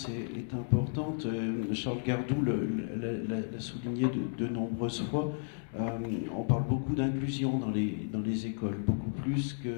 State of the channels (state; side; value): silent; right; digital silence